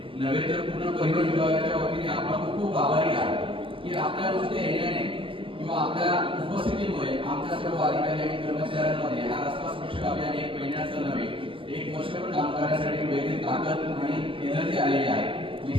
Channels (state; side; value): late; left; 0.25 ms